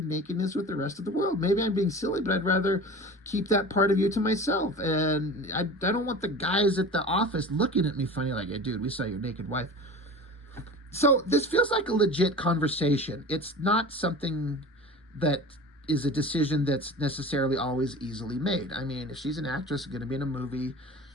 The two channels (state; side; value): normal; both; correlation 0.36